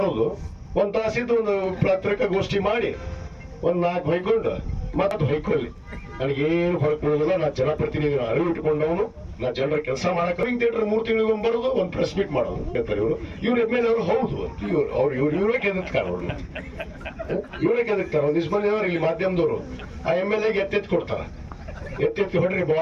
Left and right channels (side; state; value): both; identical; correlation 1.00